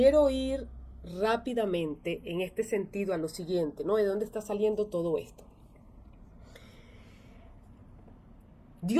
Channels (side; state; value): both; identical; correlation 1.00